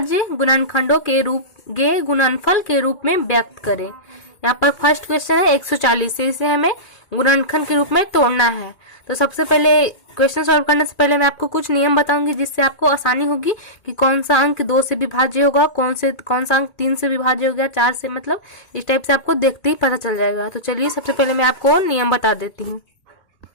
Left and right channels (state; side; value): late; right; 2.4 ms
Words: गुणनखंडों के गुणनफल के रूप में व्यक्त करें। यहाँ पर फर्स्ट क्वेश्चन है 140 से इसे हमें गुणनखंड के रूप में तोड़ना है। तो सबसे पहले क्वेश्चन सॉल्व करने से पहले मैं आपको कुछ नियम बताऊंगी जिससे आपको आसानी होगी कि कौन सा अंक 2 से विभाज्य होगा, कौन सा अंक 3 से विभाज्य हो गया, 4 से, मतलब इस टाइप से आपको देखते ही पता चल जाएगा। तो चलिए सबसे पहले मैं आपको नियम बता देती हूँ।